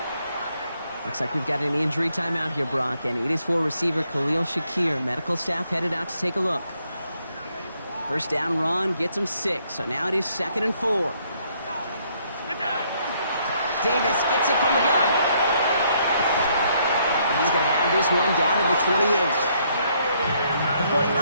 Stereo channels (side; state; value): both; inverted; correlation -0.70